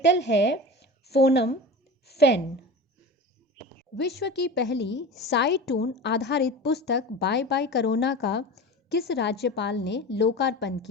है फोनम फेन। विश्व की पहली साइटून आधारित पुस्तक बाय बाय कोरोना का किस राज्यपाल ने लोकार्पण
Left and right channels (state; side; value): normal; both; correlation 0.32